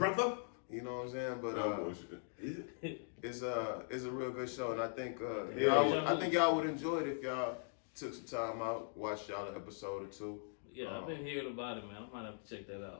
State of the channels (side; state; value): right; silent; digital silence